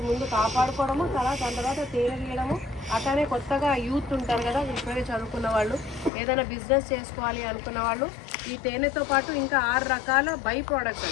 ముందు కాపాడుకోవడము, దాని తర్వాత తేనె తీయడము. అట్లానే కొత్తగా యూత్ ఉంటారు కదా, ఇప్పుడే చదువుకున్న వాళ్ళు, ఏదైనా బిజినెస్ చేసుకోవాలి అనుకున్న వాళ్ళు ఈ తేనెతో పాటు ఇంకా 6 రకాల బై ప్రోడక్ట్స్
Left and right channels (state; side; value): drops out; right; at 6.1 s